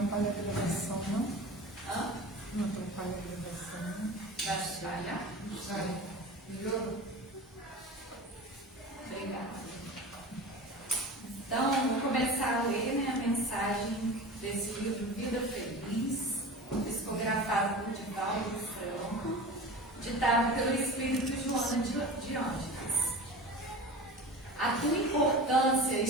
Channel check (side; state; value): both; normal; correlation 0.33